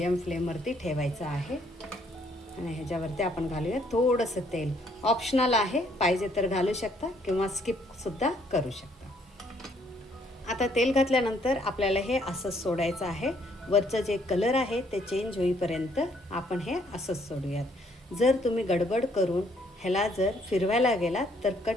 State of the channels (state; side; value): normal; both; correlation 0.67